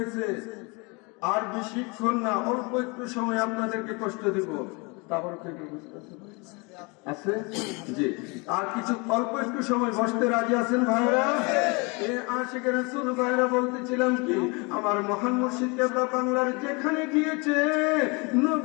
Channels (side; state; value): right; quieter; 29.1 dB